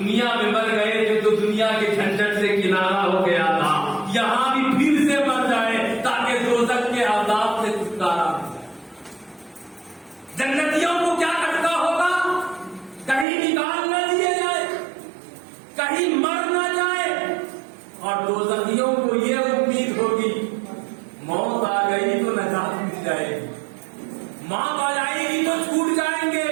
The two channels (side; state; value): left; drops out; at 13.2 s